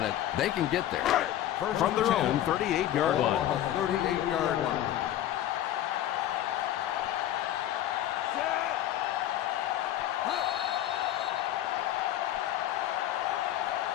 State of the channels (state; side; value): quieter; right; 12.5 dB